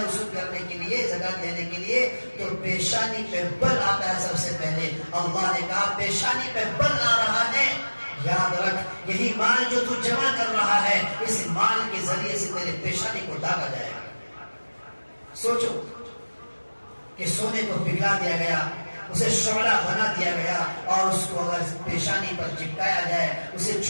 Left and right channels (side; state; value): both; inverted; correlation -1.00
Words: وصول کرنے کے لیے، زکات لینے کے لیے، تو پیشانی پہ بل آتا ہے سب سے پہلے۔ اللہ نے کہا پیشانی پہ بل آ رہا ہے، یاد رکھ یہی مال جو تو جمع کر رہا ہے، اس مال کے ذریعے سے تیرے پیشانی کو داغا جائے گا۔ سوچو کہ سونے کو پگھلا دیا گیا، اسے شعلہ بنا دیا گیا، اور اس کو اگر پیشانی پر چپکایا جائے، اسے